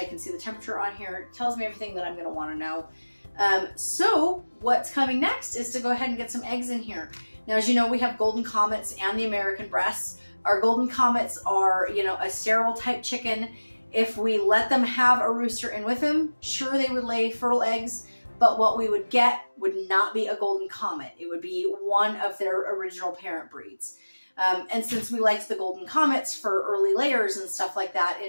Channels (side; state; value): both; inverted; correlation -1.00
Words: can see the temperature on here. It tells me everything that I'm going to want to know. So what's coming next is to go ahead and get some eggs in here. Now, as you know, we have Golden Comets and the American breasts. Our Golden Comets are, a sterile type chicken. If we let them have a rooster in with them, sure, they would lay fertile eggs, but what we would get would not be a Golden Comet. It would be one of their original parent breeds. And since we liked the Golden Comets for early layers and stuff like that,